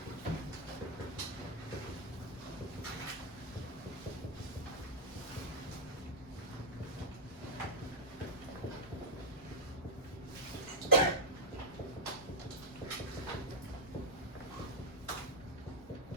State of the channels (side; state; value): both; normal; correlation -0.07